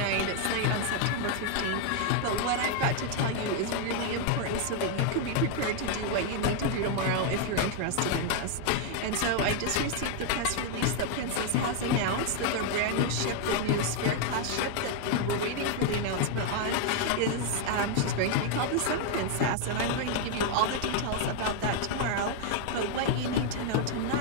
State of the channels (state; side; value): different; both; correlation 0.00